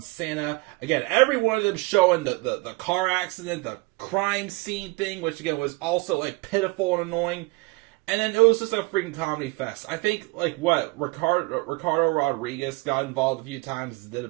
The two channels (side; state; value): left; quieter; 25.1 dB